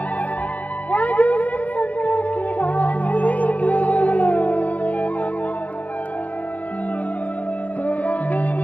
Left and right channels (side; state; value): right; late; 0.072 ms